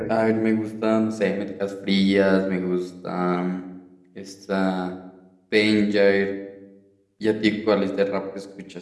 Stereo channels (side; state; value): both; identical; correlation 1.00